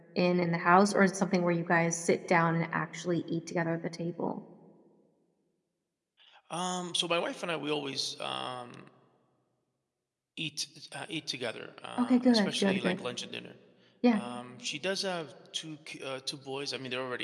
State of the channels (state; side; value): identical; both; correlation 1.00